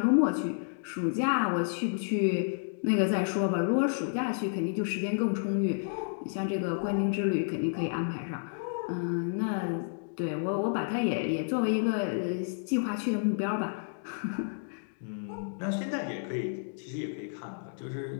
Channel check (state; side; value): silent; right; digital silence